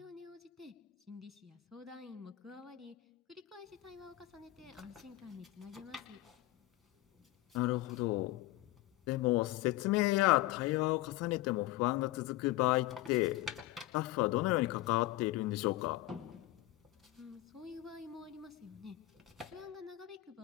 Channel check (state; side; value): quieter; right; 16.8 dB